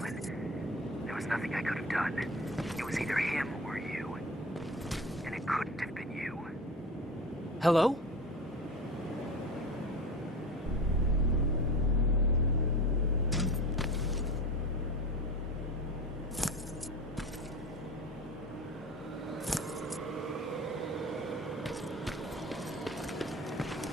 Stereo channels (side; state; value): both; normal; correlation 0.32